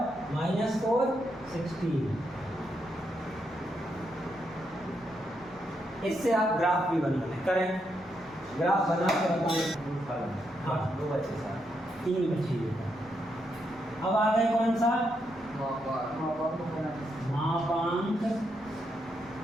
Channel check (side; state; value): left; noise; hum, 28 dB below the sound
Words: -4 16। इससे आप ग्राफ भी बना लें, करें ग्राफ बना के बताएं। हाँ 2 बचे, 3 बचे। अब आ गए कौन सा? मापांक